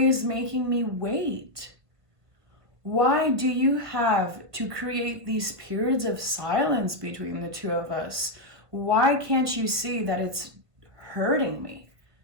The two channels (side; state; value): left; late; 1.5 ms